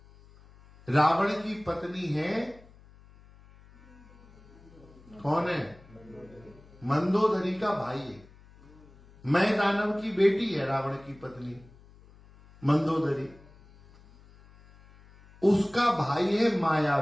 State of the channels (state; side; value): noise; left; hum, 25 dB below the sound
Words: रावण की पत्नी है, कौन है? मंदोदरी का भाई है। मैं दानव की बेटी है रावण की पत्नी मंदोदरी, उसका भाई है